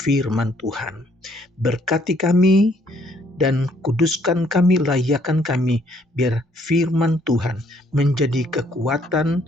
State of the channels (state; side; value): normal; both; correlation 0.66